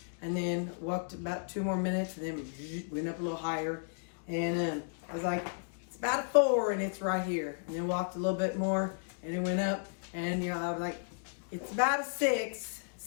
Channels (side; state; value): right; silent; digital silence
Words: and then walked about 2 more minutes, and then went up a little higher, and I was like, it's about a 4, and it's right here. And then walked a little bit more, and it went up, and I was like, it's about a 6,